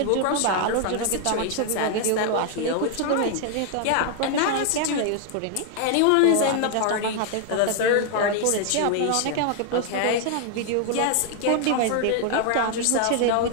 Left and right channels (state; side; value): different; both; correlation 0.00